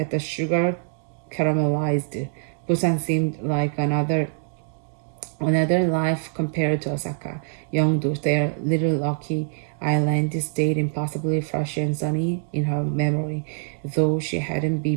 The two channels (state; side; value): silent; left; digital silence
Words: the sugar caramelized. Busan seemed like another life compared to Osaka. Yeongdo, their little lucky island, stayed impossibly fresh and sunny in her memory, though she hadn't